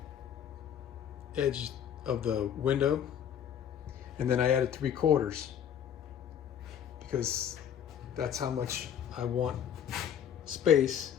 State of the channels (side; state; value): right; quieter; 9.1 dB